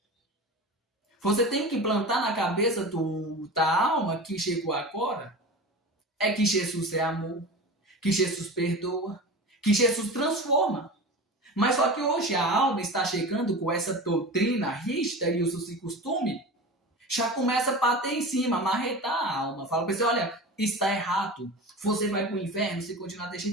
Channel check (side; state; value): both; normal; correlation 0.31